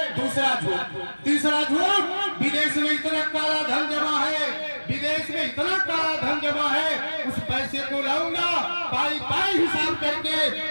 दूसरा झूठ, तीसरा झूठ, विदेश में इतना काला धन जमा है, विदेश में इतना काला धन जमा है, उस पैसे को लाऊंगा, पाई पाई हिसाब करके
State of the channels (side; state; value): both; inverted; correlation -1.00